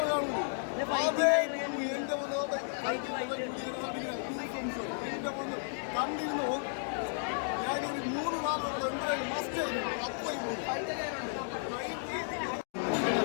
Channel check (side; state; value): right; silent; digital silence